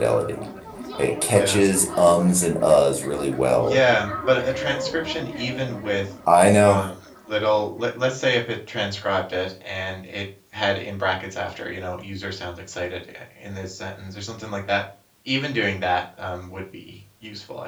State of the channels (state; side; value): identical; both; correlation 1.00